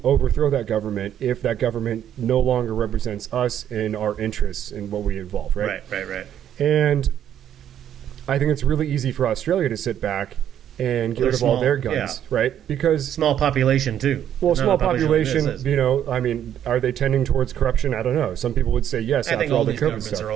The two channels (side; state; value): left; quieter; 10.2 dB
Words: overthrow that government if that government no longer represents us and our interests in what we involve, right? Right. And I think it's really easy for Australia to sit back and get rid of all their guns, right? Because small population too. Well, small population, I mean, are they tending towards corruption? I don't know. Some people would say yes after all the COVID stuff. Are